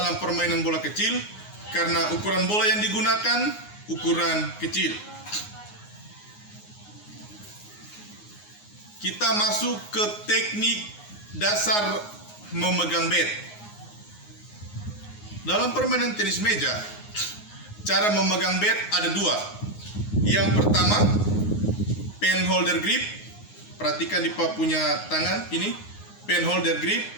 permainan bola kecil karena ukuran bola yang digunakan ukuran kecil. Kita masuk ke teknik dasar memegang bat. Dalam permainan tenis meja, cara memegang bat ada 2. Yang pertama, pen holder grip. Perhatikan di Pak punya tangan ini, pen holder grip.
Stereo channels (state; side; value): late; right; 9.6 ms